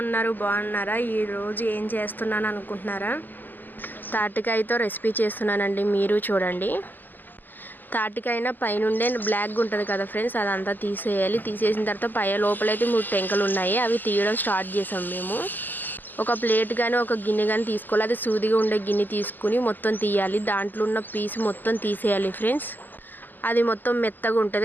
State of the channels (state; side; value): late; right; 0.088 ms